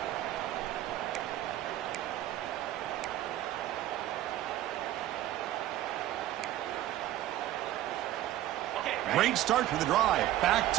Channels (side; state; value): left; quieter; 13.7 dB